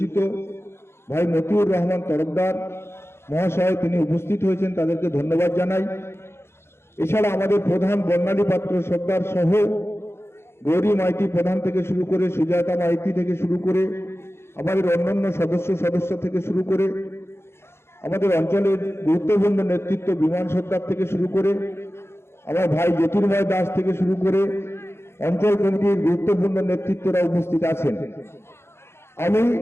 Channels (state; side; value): late; right; 0.12 ms